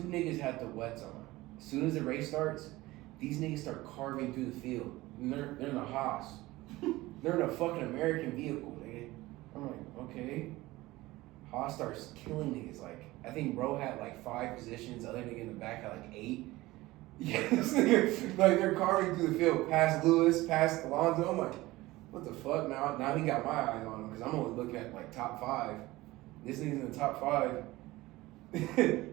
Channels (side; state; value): left; quieter; 18.9 dB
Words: niggas had the wets on. As soon as the race starts, these niggas start carving through the field. And they're in a Haas. They're in a fucking American vehicle, nigga. I'm like, okay. Haas starts killing niggas. Like, I think bro had like 5 positions. Other nigga in the back had like 8. Yeah, this nigga, like they're carving through the field, past Lewis, past Alonso. I'm like, what the fuck? Now he got my eyes on him because I'm only looking at like top 5. This nigga's in the top 5.